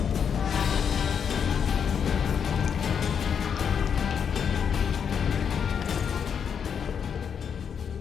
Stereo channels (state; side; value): quieter; right; 7.3 dB